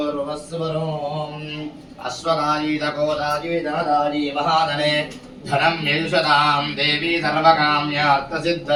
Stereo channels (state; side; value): identical; both; correlation 1.00